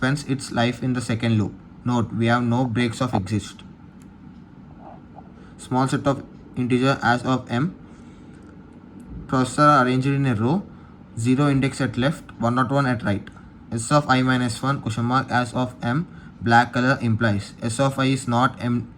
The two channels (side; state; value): both; identical; correlation 1.00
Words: its life in the second loop. Note, we have no breaks of exist. Small set of integer as of m. Processors are arranged in a row. 0 index at left, 101 at right. S of I minus 1 question mark as of m black color implies S of I is not